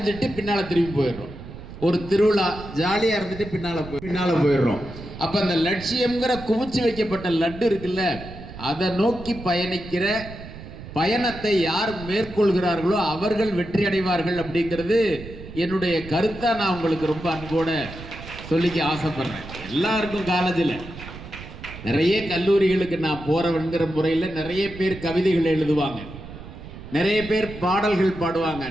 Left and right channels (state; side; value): noise; right; rumble, 13 dB below the sound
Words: பின்னால திரும்பி போயிடுறோம். ஒரு திருவிழா ஜாலியா இருந்துட்டு பின்னால போயிடுறோம். அப்ப அந்த லட்சியம்ங்கிற குவிச்சு வைக்கப்பட்ட லட்டு இருக்குல்ல, அதை நோக்கி பயணிக்கிற பயணத்தை யார் மேற்கொள்கிறார்களோ அவர்கள் வெற்றி அடைவார்கள் அப்படிங்கிறது என்னுடைய கருத்தா நான் உங்களுக்கு ரொம்ப அன்போட சொல்லிக்க ஆசைப்படுறேன். எல்லாருக்கும் காலேஜில் நிறைய கல்லூரிகளுக்கு நான் போறவங்கிற முறையில் நிறைய பேர் கவிதைகள் எழுதுவாங்க, நிறைய பேர் பாடல்கள் பாடுவாங்க,